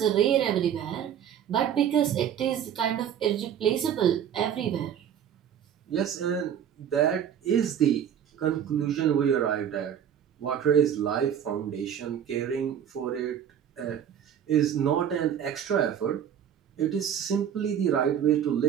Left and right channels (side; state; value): left; quieter; 9.1 dB